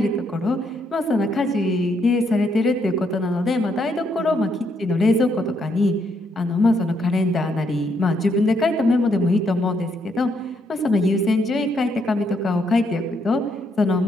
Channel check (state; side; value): normal; both; correlation 0.75